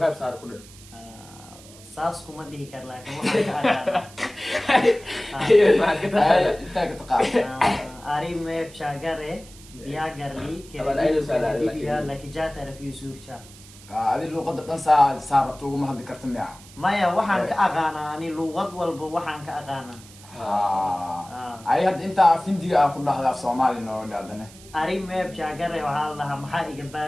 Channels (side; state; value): right; noise; hiss, 21 dB below the sound